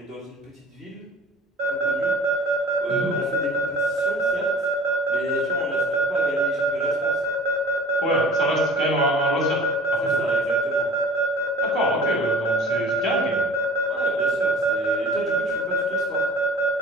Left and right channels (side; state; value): both; normal; correlation 0.44